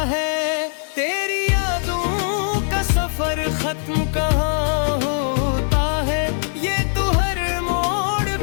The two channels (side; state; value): right; silent; 65 dB below the other